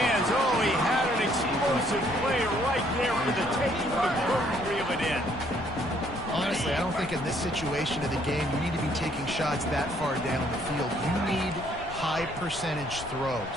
Oh, he had an explosive play right there for the taking, but couldn't reel it in. Honestly, I don't think in this situation of the game you need to be taking shots that far down the field. You need high percentage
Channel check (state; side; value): noise; left; rumble, 14 dB below the sound